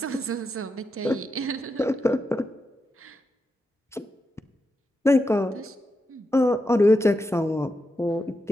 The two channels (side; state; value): both; normal; correlation 0.86